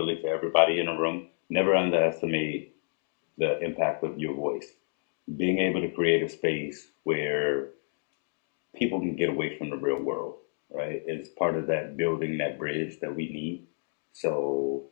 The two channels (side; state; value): right; silent; digital silence